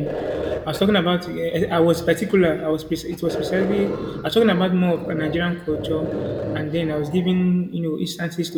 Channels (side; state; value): both; identical; correlation 1.00